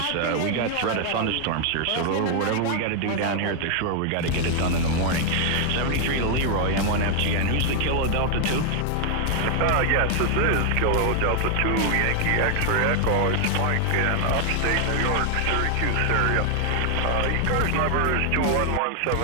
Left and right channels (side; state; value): both; different; correlation 0.00